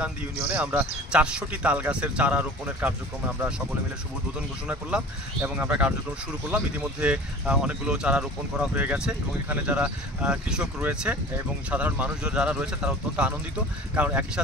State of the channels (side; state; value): both; normal; correlation 0.41